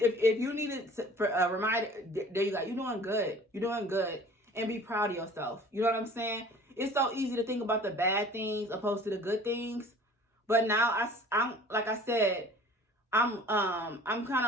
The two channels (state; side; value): normal; both; correlation 0.47